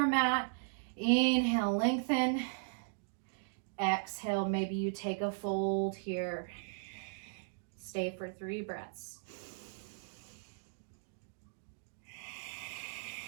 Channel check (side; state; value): left; silent; digital silence